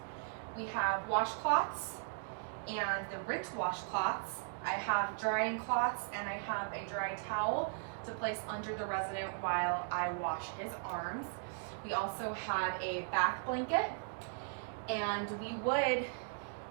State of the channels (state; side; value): silent; left; digital silence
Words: we have washcloths and the rinse washcloths. I have drying cloths and I have a dry towel to place under the resident while I wash his arms. We also have a back blanket, and we would,